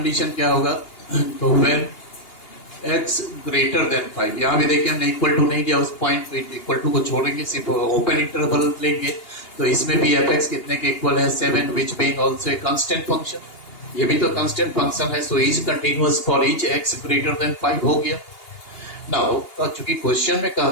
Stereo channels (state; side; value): late; right; 2.8 ms